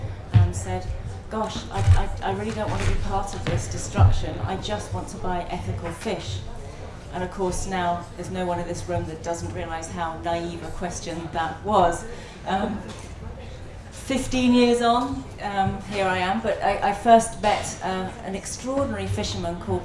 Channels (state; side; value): identical; both; correlation 1.00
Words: and said, gosh, I really don't want to be part of this destruction. I just want to buy ethical fish. And of course now there's no one in this room that doesn't realise how naive a question that was. 15 years on, here I am, but I first met an extraordinary fisherman